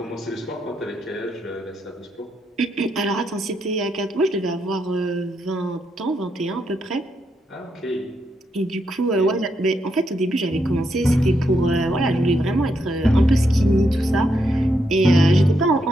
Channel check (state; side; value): normal; both; correlation 0.80